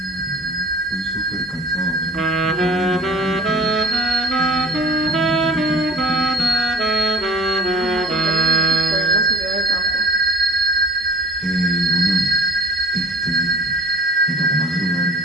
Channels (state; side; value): normal; both; correlation 0.44